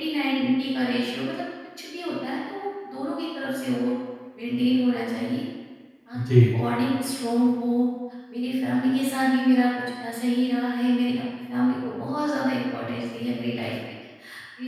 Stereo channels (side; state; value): both; identical; correlation 1.00